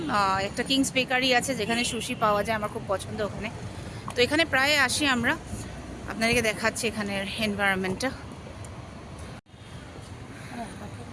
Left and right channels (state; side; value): identical; both; correlation 1.00